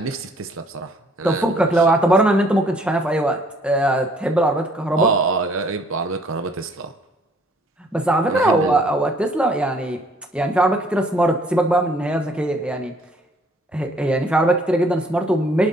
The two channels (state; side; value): normal; both; correlation 0.60